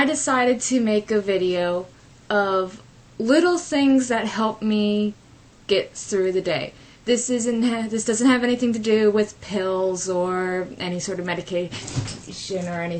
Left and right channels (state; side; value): identical; both; correlation 1.00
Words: decided to make a video of little things that help me get through the day. This doesn't have anything to do with pills or any sort of medication or